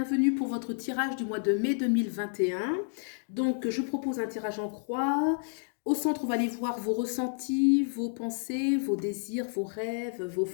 pour votre tirage du mois de mai 2021. Donc je propose un tirage en croix. Au centre, on va aller voir vos ressentis, vos pensées, vos désirs, vos rêves, vos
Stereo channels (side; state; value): right; silent; 58 dB below the other